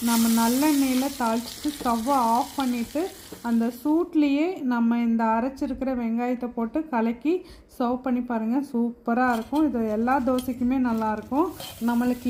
நம்ம நல்லெண்ணெயில் தாளிச்சிட்டு ஸ்டவ்வை ஆஃப் பண்ணிவிட்டு அந்த சூட்லேயே நம்ம இந்த அரைச்சிருக்கிற வெங்காயத்தை போட்டு கலக்கி சர்வ் பண்ணி பாருங்கள். சூப்பராக இருக்கும். இது எல்லா தோசைக்குமே நல்லாயிருக்கும். நம்மளுக்கு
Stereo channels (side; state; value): both; identical; correlation 1.00